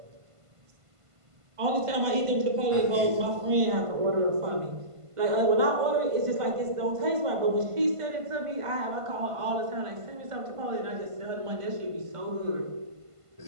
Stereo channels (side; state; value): left; late; 1.5 ms